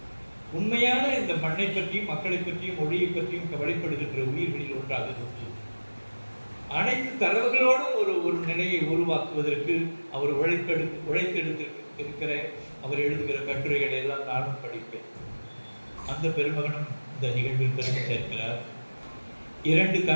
உண்மையான இந்த மண்ணை பற்றியும், மக்களை பற்றியும், மொழியை பற்றியும் கவலைப்படுகின்ற உயிர்களில் ஒன்றாக இருந்து அனைத்து தரவுகளோடும் ஒரு நிலையை உருவாக்குவதற்கு அவர் உழைத்தெடுத்திருக்கிற அவர் எழுதுகிற கட்டுரைகளை எல்லாம் நானும் படிப்பேன். அந்த பெருமகனும் இந்த நிகழ்வில் பெருமை சேர்க்கிறார். 2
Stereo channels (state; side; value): inverted; both; correlation -1.00